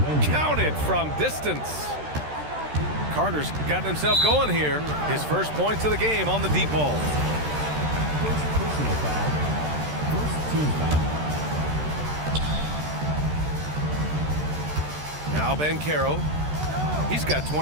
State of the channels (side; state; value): left; late; 13 ms